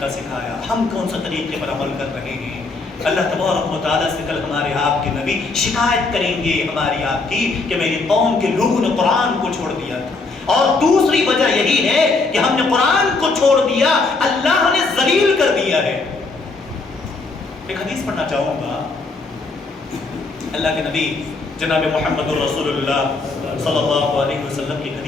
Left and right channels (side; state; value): right; quieter; 3.8 dB